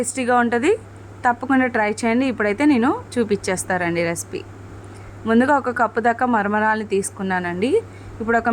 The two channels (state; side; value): identical; both; correlation 1.00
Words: ఉంటుంది. తప్పకుండా ట్రై చేయండి. ఇప్పుడైతే నేను చూపించేస్తారండి రెసిపీ. ముందుగా ఒక కప్పు దాకా మరమరాలని తీసుకున్నానండి. ఇప్పుడు